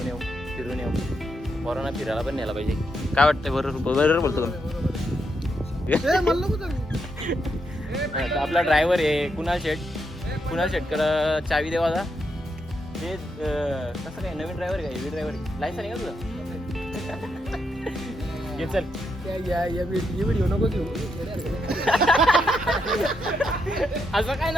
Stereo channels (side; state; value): both; normal; correlation 0.81